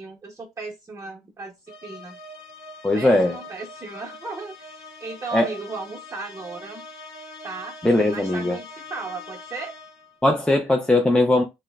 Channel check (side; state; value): both; normal; correlation 0.82